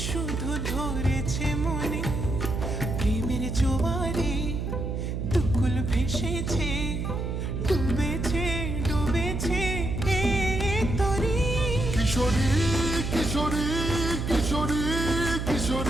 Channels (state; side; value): noise; right; hum, 3 dB below the sound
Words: শুধু ধরেছে মনে। প্রেমের জোয়ারে দুকুল ভেসেছে, ডুবেছে ডুবেছে এ তরি। কিশোরী কিশোরী কিশোরী